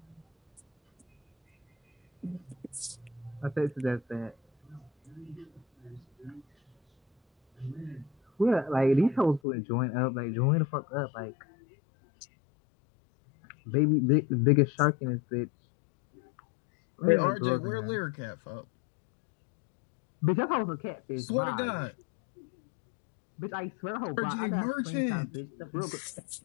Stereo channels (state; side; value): drops out; right; at 9.4 s